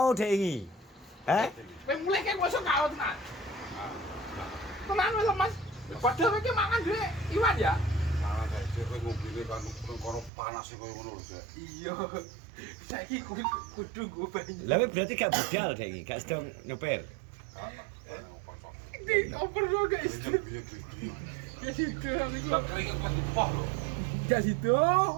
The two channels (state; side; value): drops out; left; at 10.3 s